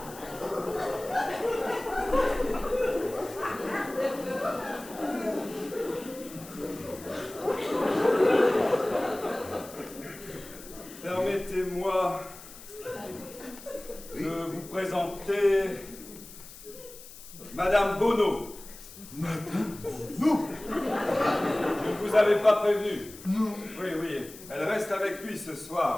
Permettez-moi de vous présenter Madame Bonneau. Madame Bonneau? Je ne vous avais pas prévenu. Non. Oui, elle reste avec lui ce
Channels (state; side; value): noise; left; hiss, 17 dB below the sound